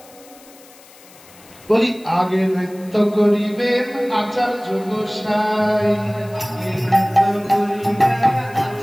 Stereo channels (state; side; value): noise; left; hiss, 24 dB below the sound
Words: বলি, আগে নৃত্য করিবেন আচার্য গোসাই।